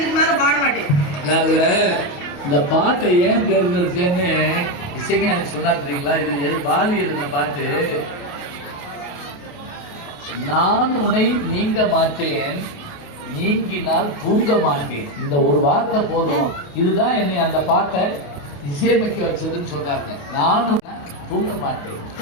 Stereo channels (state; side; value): late; right; 28 ms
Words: மேல பாட மாட்டேன். இந்த பாட்டை ஏன் தேர்ந்தெடுத்தேன்னு இசைக்கு எனக்கு சொன்னா தெரியுங்களா? இது பாலி இருந்த பாட்டு. நான் உன்னை நீங்க மாட்டேன், நீங்கினால் தூங்க மாட்டேன். இந்த ஒரு வார்த்தை போதும். இதுதான் என்னை அந்த பாட்டை இசையமைக்க வச்சதுன்னு சொல்றாங்க. நானும் தூங்க மாட்டேன்,